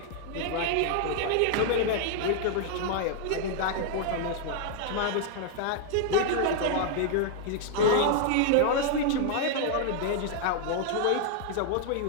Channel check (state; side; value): different; both; correlation 0.00